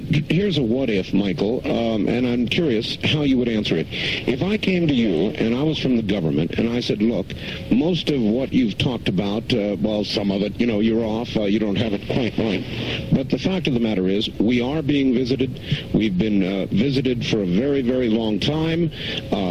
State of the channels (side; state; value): both; identical; correlation 1.00